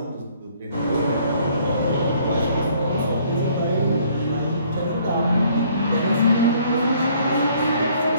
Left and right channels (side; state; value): both; inverted; correlation -0.61